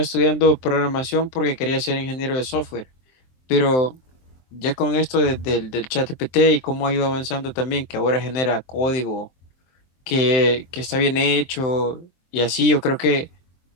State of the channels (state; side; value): late; right; 23 ms